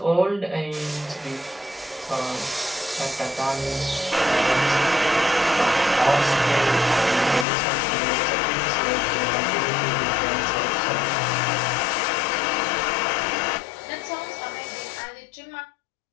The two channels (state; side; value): drops out; right; at 7.5 s